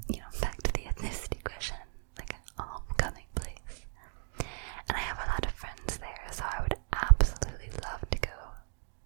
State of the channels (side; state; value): left; silent; 54 dB below the other